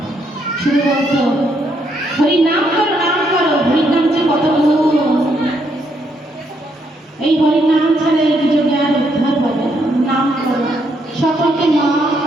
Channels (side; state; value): both; normal; correlation 0.74